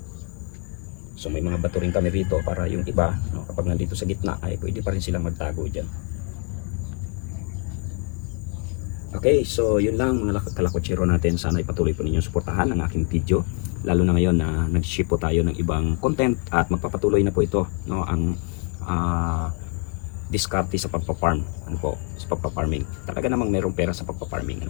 So may mga bato rin kami rito para yung iba, no, kapag nandito sa gitna ay pwede pa rin silang magtago dyan. Okay, so yun lang mga kalakwatsero natin. Sana ipatuloy po ninyong suportahan ang aking video. Lalo na ngayon na nag-ship po tayo ng ibang content at magpapatuloy na po ito, no, ang diskarte sa pagpa-farm, ano po, sa pagpa-farming. Talaga namang mayroong pera sa pagpa-farming,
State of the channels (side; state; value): right; quieter; 34.6 dB